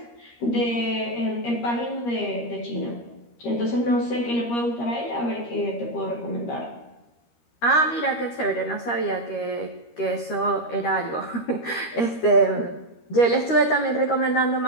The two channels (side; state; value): right; late; 13 ms